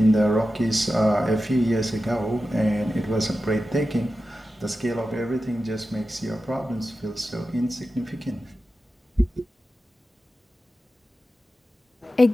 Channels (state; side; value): normal; both; correlation 0.92